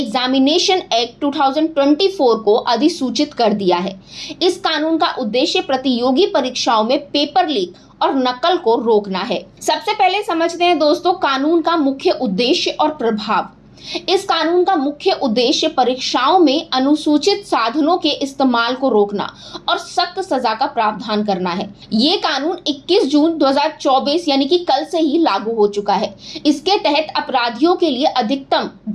एक्ट 2024 को अधिसूचित कर दिया है। इस कानून का उद्देश्य प्रतियोगी परीक्षाओं में पेपर लीक और नकल को रोकना है। सबसे पहले समझते हैं दोस्तों कानून का मुख्य उद्देश्य और प्रभाव। इस कानून का मुख्य उद्देश्य परीक्षाओं में अनुसूचित साधनों के इस्तेमाल को रोकना और सख्त सजा का प्रावधान करना है। ये कानून 21 जून 2024 यानी कि कल से ही लागू हो चुका है। इसके तहत अपराधियों के लिए अधिकतम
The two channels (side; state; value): both; identical; correlation 1.00